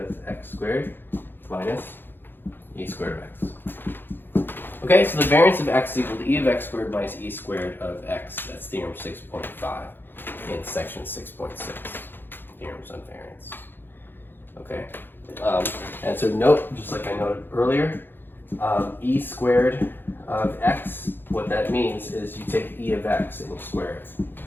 x squared minus e squared of x. Okay, so the variance of x is equal to e of x squared minus e squared of x. That's theorem 6.5 in section 6.6, theorems on variance. Okay, and so note, just like I noted earlier, e squared of x, what that means is you take e of x and you square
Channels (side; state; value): right; late; 0.099 ms